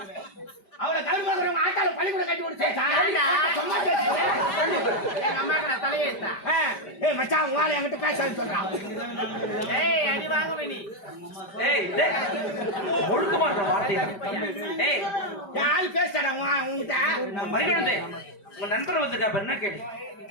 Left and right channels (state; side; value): late; right; 5.1 ms